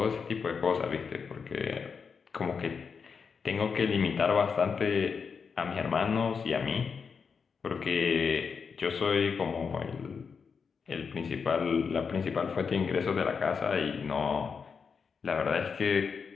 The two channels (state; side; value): quieter; right; 5.8 dB